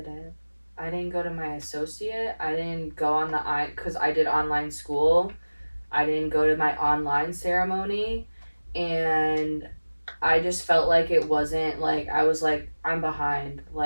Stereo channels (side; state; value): both; inverted; correlation -1.00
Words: I didn't go to my associate. I didn't go on because I did online school. I didn't go to my online ceremony. And I just felt like it wasn't, like, I was like, I'm behind.